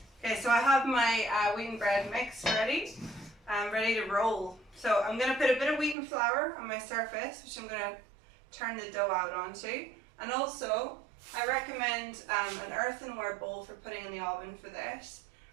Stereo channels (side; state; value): left; drops out; at 6.0 s